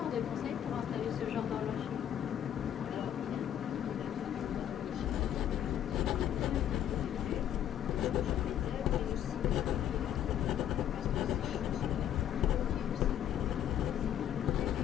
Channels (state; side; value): quieter; right; 10.5 dB